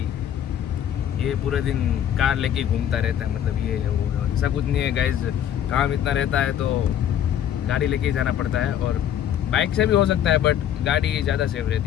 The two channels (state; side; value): quieter; right; 10.2 dB